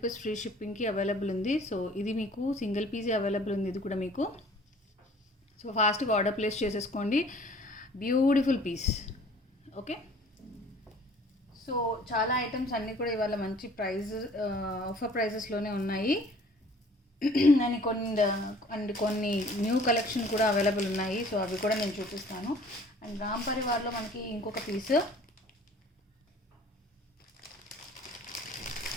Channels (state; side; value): normal; both; correlation 0.52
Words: ఫ్రీ షిప్పింగ్కి అవైలబుల్ ఉంది. సో ఇది మీకు సింగిల్ పీసే అవైలబుల్ ఉంది ఇది కూడా మీకు. సో ఫాస్ట్గా ఆర్డర్ ప్లేస్ చేసేసుకోండి. Beautiful piece. ఓకే, సో చాలా ఐటమ్స్ అన్నీ కూడా ఇవాళ మంచి ఆఫర్ ప్రైజెస్లోనే ఉన్నాయి. అండ్ కొన్ని న్యూ కలెక్షన్ కూడా అవైలబుల్ ఉన్నాయి. సో అవి కూడా నేను చూపిస్తాను. అండ్ రామ్ పరివార్లో మనకి ఇంకొక పీస్.